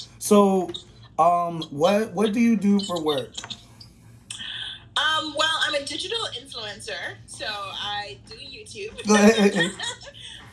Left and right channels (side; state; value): both; identical; correlation 1.00